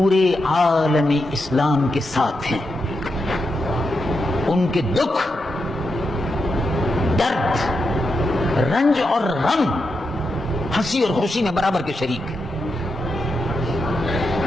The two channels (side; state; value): both; normal; correlation 0.86